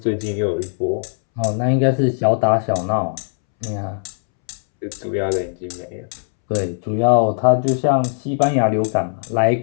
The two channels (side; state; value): right; silent; 66 dB below the other